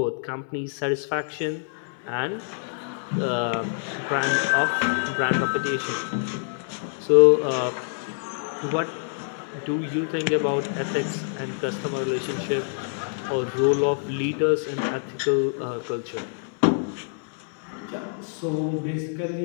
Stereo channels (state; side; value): silent; right; digital silence